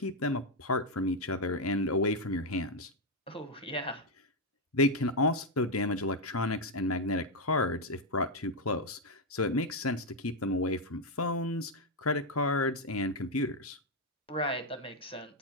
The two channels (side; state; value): both; normal; correlation 0.03